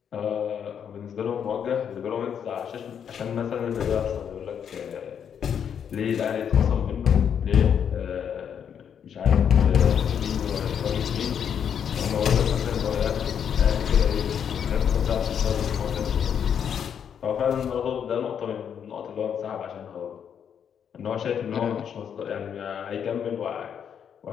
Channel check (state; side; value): quieter; right; 8.1 dB